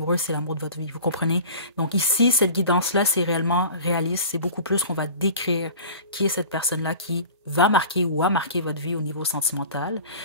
c'est l'amour de votre vie. Vous comprenez? Donc ici, cette guidance-là, c'est réellement réaliste. C'est beaucoup plus qu'on va décrire qui est cette personne-là qui va marquer ou a marqué votre vie au niveau sentimental.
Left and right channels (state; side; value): inverted; both; correlation -0.39